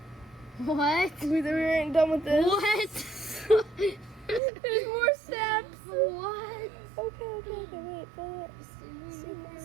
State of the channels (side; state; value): left; drops out; at 4.4 s